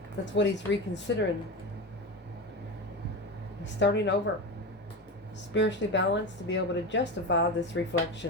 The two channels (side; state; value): both; normal; correlation 0.22